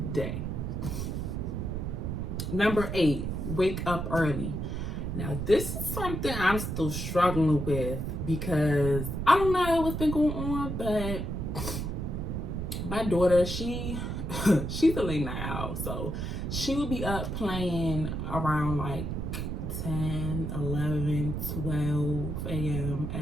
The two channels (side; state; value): right; noise; rumble, 3 dB below the sound